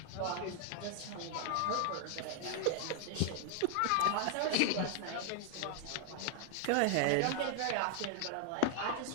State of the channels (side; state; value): both; different; correlation 0.00